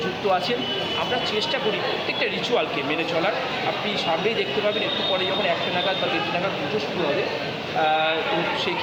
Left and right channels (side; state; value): both; identical; correlation 1.00